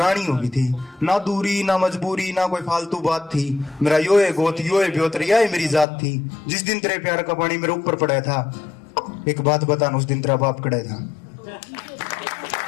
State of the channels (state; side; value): drops out; right; at 5.9 s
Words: हो गई थी। ना दूरी ना मजबूरी ना कोई फालतू बात थी। मेरा यो है गोत यो है ब्योतरिया है मेरी जात थी। जिस दिन तेरे प्यार का पानी मेरे ऊपर पड़ा था। एक बात बता उस दिन तेरा बाप कड़ा था।